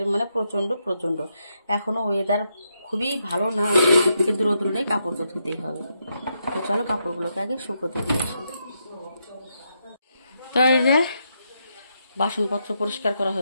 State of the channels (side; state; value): both; inverted; correlation -0.81